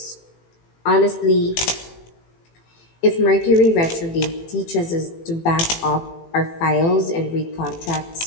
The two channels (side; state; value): right; late; 18 ms